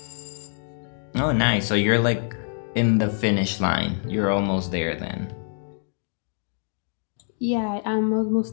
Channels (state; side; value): silent; right; 62 dB below the other